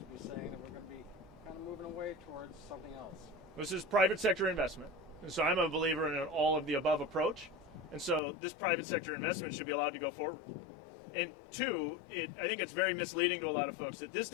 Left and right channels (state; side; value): drops out; right; at 8.2 s